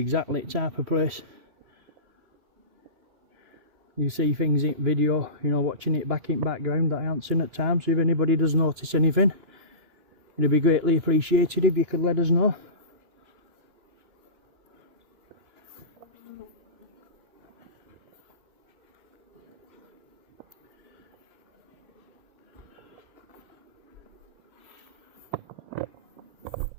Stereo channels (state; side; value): late; left; 2.9 ms